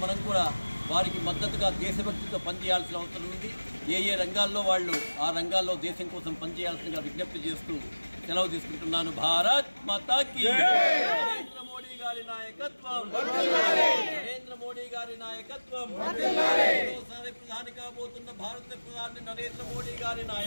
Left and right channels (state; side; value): inverted; both; correlation -1.00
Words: మనం కూడా వారికి మద్దతుగా దేశభక్తితో పనిచేయాల్సిన అవసరం ఉంది. ఏ రంగాల్లో వాళ్ళు ఆ రంగాల్లో దేశం కోసం పనిచేయాల్సిందిగా విజ్ఞప్తి చేస్తూ సెలవు తీసుకుంటున్నాను. భారత్ మాతాకి నరేంద్ర మోడీ గారి నాయకత్వం, నరేంద్ర మోడీ గారి నాయకత్వం, మరోసారి ప్రధాని కాబోతున్న భారత ప్రధాని నరేంద్ర మోడీ గారి